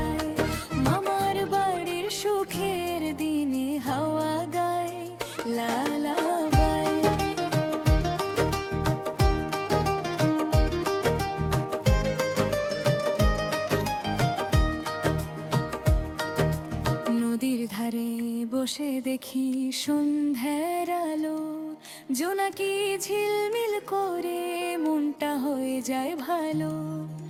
মামার বাড়ির সুখের দিনে হাওয়া গায় লা লা বাই। নদীর ধারে বসে দেখি সন্ধ্যার আলো, জোনাকি ঝিলমিল করে মনটা হয়ে যায় ভালো।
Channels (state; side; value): identical; both; correlation 1.00